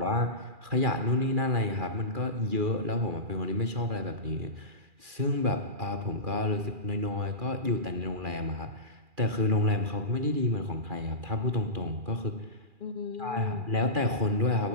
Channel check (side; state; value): left; late; 2.4 ms